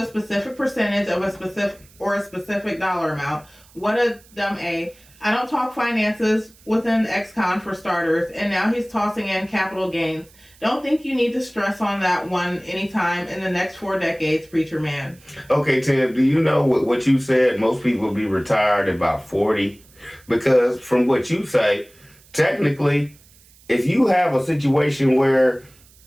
specific percentage of a specific dollar amount. What a dumb A. I don't talk finances within ex-con for starters, and now he's tossing in capital gains. Don't think you need to stress on that one anytime in the next 4 decades, preacher man. Okay, Tim, do you know what you said? Most people will be retired at about 40. Because from what you say, technically, if you have a situation where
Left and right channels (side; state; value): right; noise; hiss, 27 dB below the sound